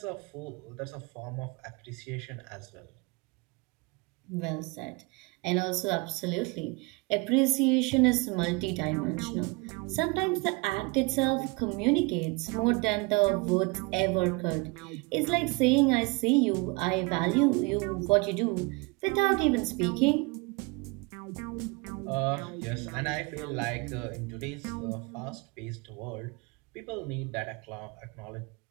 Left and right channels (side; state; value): left; quieter; 27.1 dB